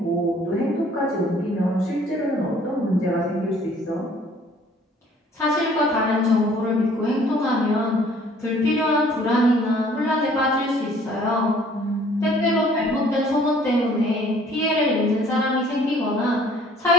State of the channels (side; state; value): both; normal; correlation 0.56